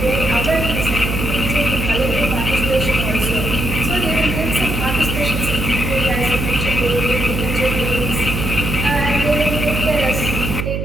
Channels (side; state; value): right; noise; hum, 2 dB below the sound